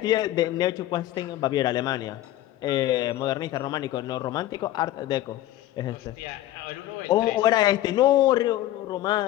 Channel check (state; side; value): quieter; right; 14.4 dB